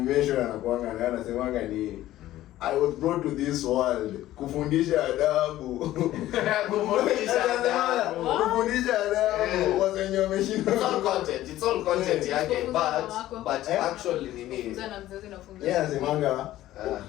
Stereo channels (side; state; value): right; quieter; 14.5 dB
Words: anakuanga na anasemanga ni I was brought to this world kufundisha adabu. Kufundisha adabu. Wasenyo wameshinda. It's all content yake but actually nini? Yeah, anasemanga